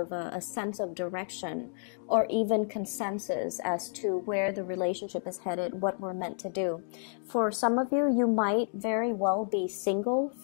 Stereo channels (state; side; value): silent; right; digital silence